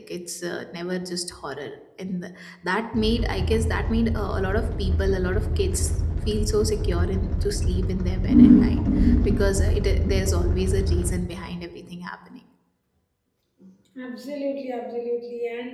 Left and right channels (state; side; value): identical; both; correlation 1.00